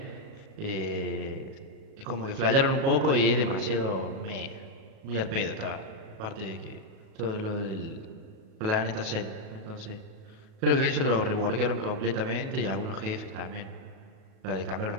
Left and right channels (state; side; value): late; left; 37 ms